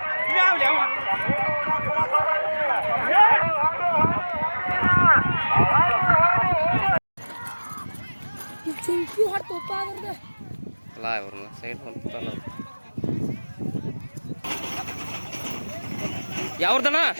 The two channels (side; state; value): both; inverted; correlation -1.00